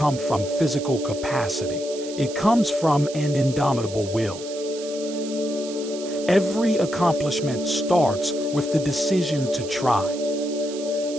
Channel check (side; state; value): right; noise; hiss, 14 dB below the sound